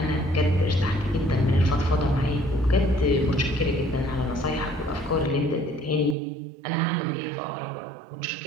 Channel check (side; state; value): left; drops out; at 6.2 s